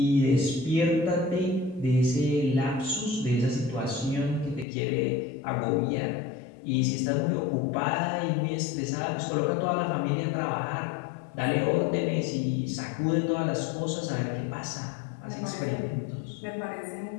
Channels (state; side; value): drops out; right; at 4.7 s